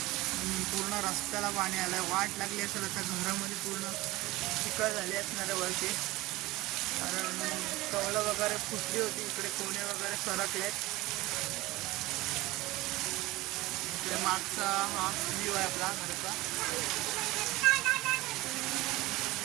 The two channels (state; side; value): quieter; left; 19.6 dB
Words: पूर्ण रस्त्याला पाणी आलंय, वाट लागली असेल आता घरामध्ये, पूर्ण चिखल झाली असणार आहे वरती, कारण कौलं वगैरे फुटली होती। इकडे कोणे वगैरे सरकलेत। इकडे मागचा हा व्ह्यू आहे आपला घराचा।